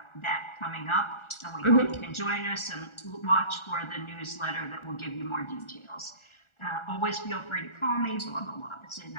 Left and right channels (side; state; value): right; late; 1.4 ms